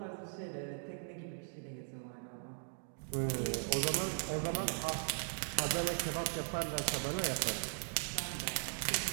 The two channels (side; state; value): left; silent; digital silence